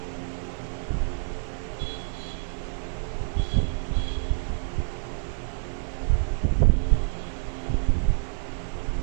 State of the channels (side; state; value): left; silent; 60 dB below the other